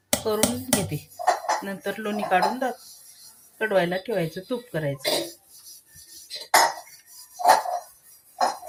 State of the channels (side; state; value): both; identical; correlation 1.00